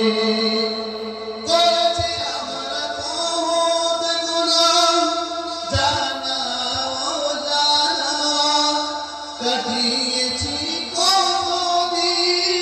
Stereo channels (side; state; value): both; identical; correlation 1.00